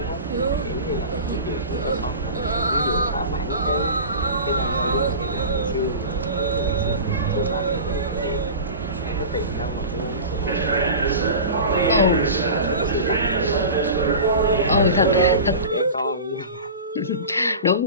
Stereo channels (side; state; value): both; inverted; correlation -0.33